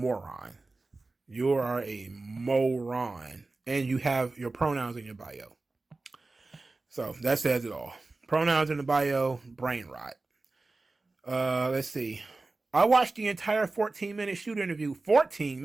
You are a moron. And you have your pronouns in your bio. So that says it all. Pronouns in the bio, brain rot. Let's see. I watched the entire 14-minute shoot interview. 14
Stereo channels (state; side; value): quieter; left; 3.4 dB